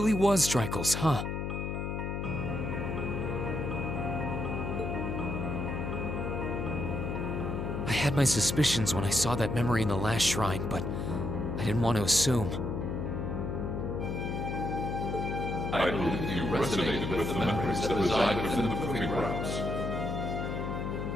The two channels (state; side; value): noise; left; hum, 3 dB below the sound